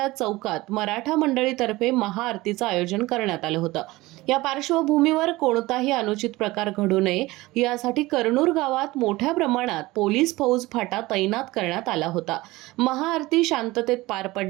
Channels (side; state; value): left; quieter; 19.9 dB